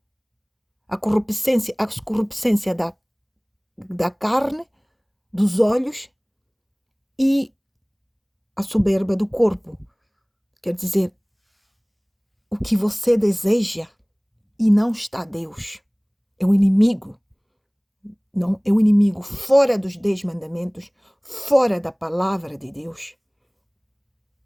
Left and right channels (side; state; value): both; identical; correlation 1.00